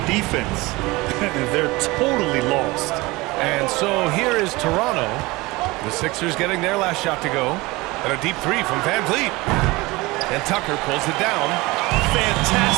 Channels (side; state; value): left; quieter; 22.1 dB